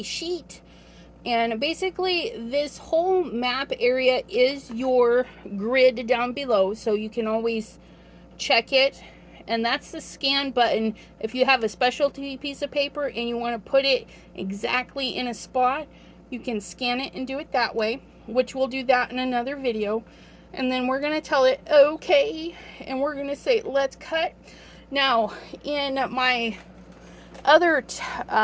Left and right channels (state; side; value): identical; both; correlation 1.00